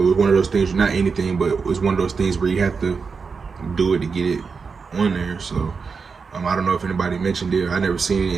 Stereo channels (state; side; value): quieter; left; 5.2 dB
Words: it's one of those things, not anything, but it's one of those things where you have to do it to get it on there. So I don't know if anybody mentioned it. I never seen it